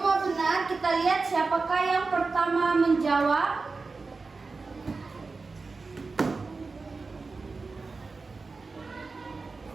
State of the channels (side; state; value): left; quieter; 4.1 dB